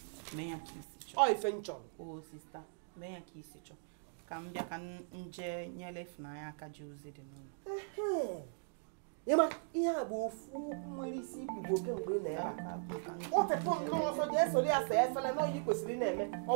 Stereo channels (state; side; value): silent; left; digital silence